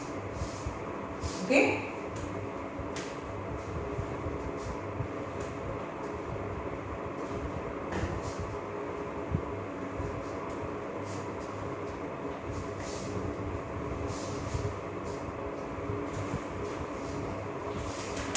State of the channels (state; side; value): identical; both; correlation 1.00